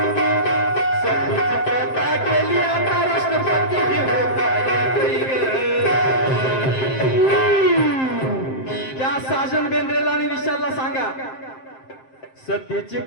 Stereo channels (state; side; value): late; right; 7.6 ms